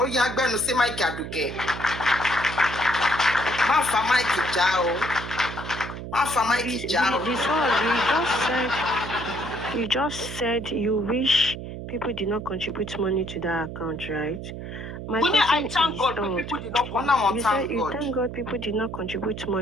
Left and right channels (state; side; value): noise; right; hum, 9 dB below the sound